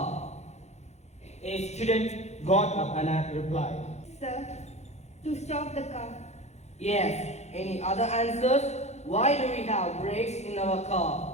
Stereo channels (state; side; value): late; right; 0.32 ms